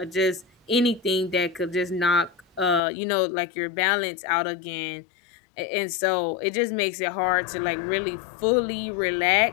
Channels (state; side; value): drops out; right; at 2.8 s